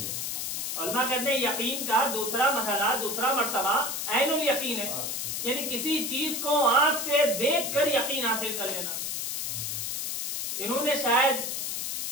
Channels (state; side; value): noise; left; hiss, 3 dB below the sound